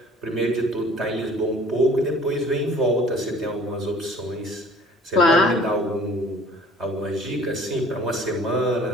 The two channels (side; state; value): both; normal; correlation 0.50